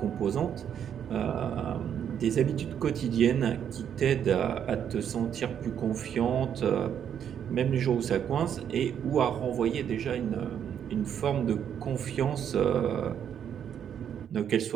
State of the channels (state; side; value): quieter; left; 8.8 dB